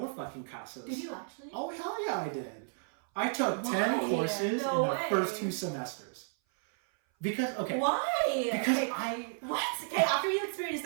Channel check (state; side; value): silent; left; 56 dB below the other